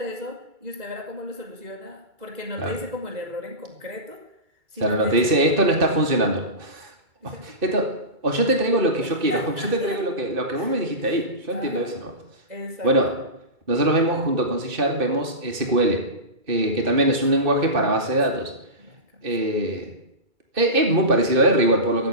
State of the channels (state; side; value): late; left; 2.3 ms